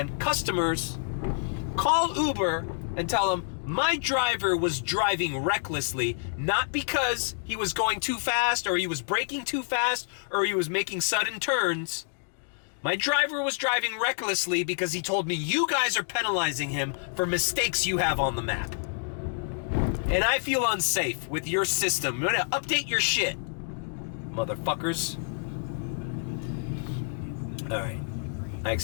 Customers, call Uber and tell them, "My driver was driving recklessly, not because he was going too fast or he was braking too fast or he was making sudden turns. My driver was driving recklessly because he told me you guys are penalizing him for mistakes you have on the map. And I feel unsafe with your system. You're gonna update your shit, motherfuckers." All right. I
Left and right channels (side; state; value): right; silent; digital silence